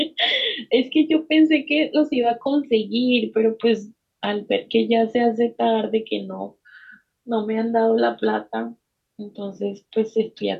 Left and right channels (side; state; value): both; identical; correlation 1.00